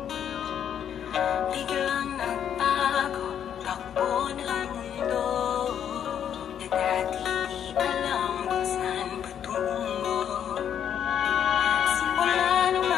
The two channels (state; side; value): quieter; right; 9.1 dB